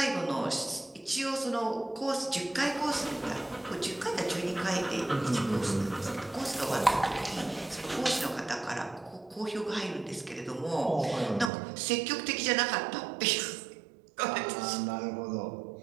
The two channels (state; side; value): drops out; left; at 11.5 s